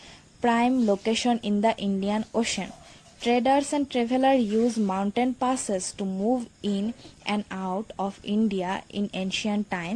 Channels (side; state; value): both; identical; correlation 1.00